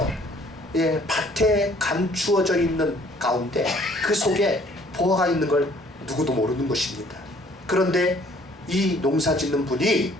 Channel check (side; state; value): both; normal; correlation 0.58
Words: 밭에 감추어져 있는 가운데 그 속에 보화가 있는 걸 누구도 모르는 것입니다. 그런데 이 농사 짓는 분이